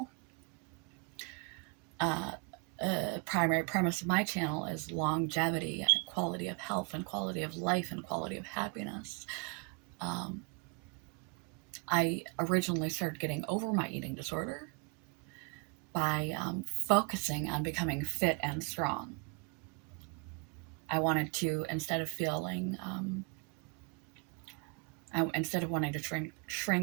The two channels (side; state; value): left; quieter; 31.9 dB